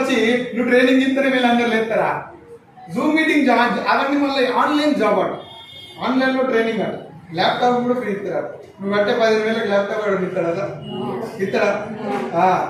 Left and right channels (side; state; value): both; identical; correlation 1.00